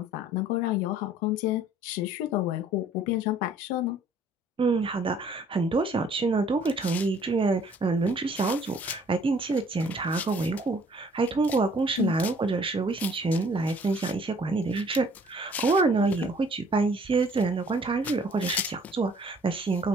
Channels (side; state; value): both; normal; correlation 0.57